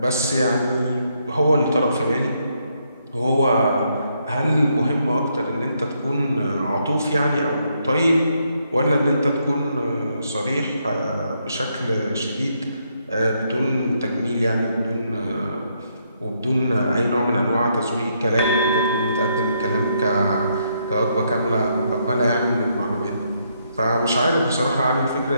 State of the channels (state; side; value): inverted; both; correlation -0.76